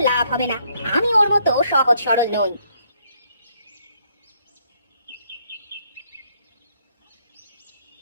লাভ হবে না, আমি ওর মতো সহজ সরল নই।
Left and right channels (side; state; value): both; inverted; correlation -0.70